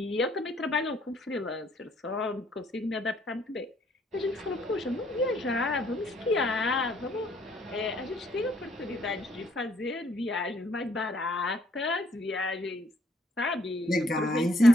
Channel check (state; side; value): normal; both; correlation 0.66